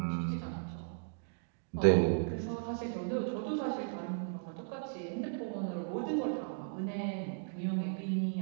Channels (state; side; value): silent; left; digital silence